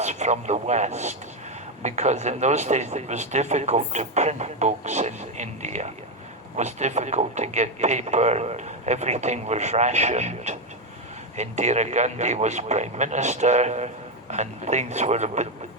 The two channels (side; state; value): both; normal; correlation 0.08